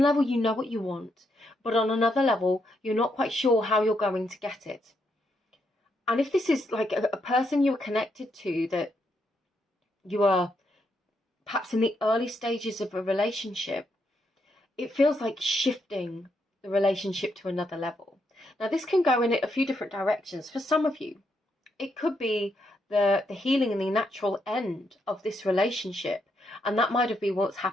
level, you know what you want. But on another level, you're not quite sure how you're going to get it. And if this is like a person you're connected to, that you are perhaps in the early stages of a relationship, it feels like shifting the relationship to another level. Now, this can go in a few different directions. For some of you, it could be the healing and the natural end of this relationship. And that might have been what's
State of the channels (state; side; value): normal; both; correlation 0.78